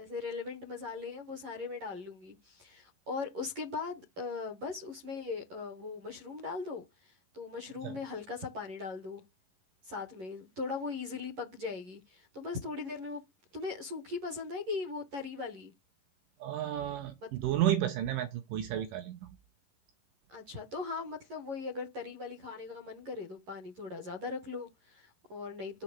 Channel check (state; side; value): late; left; 11 ms